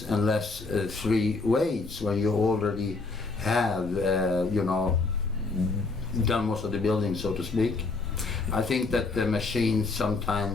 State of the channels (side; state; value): right; quieter; 3.8 dB